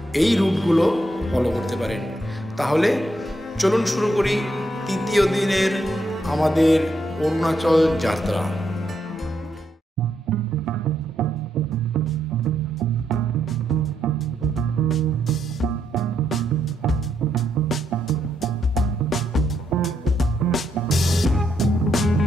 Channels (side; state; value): both; normal; correlation 0.78